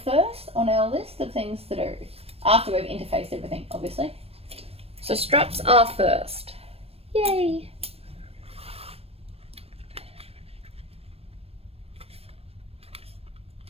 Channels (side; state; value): left; late; 0.28 ms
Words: first on our list of things to do after we've interfaced everything, obviously. So straps are first. Yay!